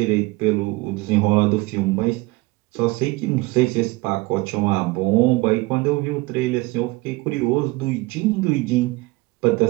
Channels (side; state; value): left; quieter; 22.5 dB